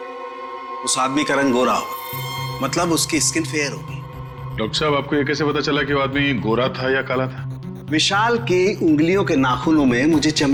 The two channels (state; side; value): identical; both; correlation 1.00